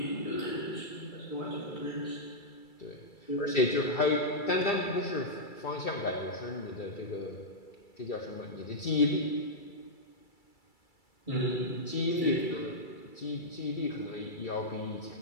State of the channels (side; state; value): right; late; 2.3 ms